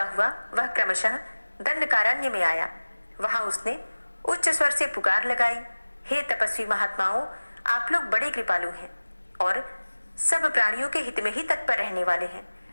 हुआ वह क्रमशः दंडकारण्य में आया। वहां उसने उच्च स्वर से पुकार लगाई, हे तपस्वी महात्माओं, आप लोग बड़े कृपालु हैं और सब प्राणियों के हित में ही तत्पर रहने वाले हैं।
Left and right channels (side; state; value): both; inverted; correlation -1.00